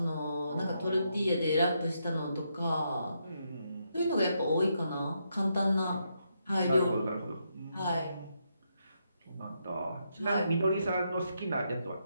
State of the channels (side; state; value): both; inverted; correlation -0.80